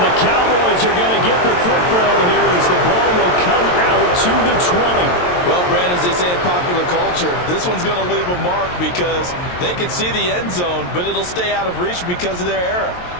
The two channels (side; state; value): right; late; 22 ms